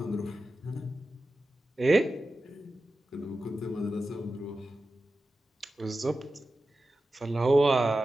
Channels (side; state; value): both; normal; correlation 0.93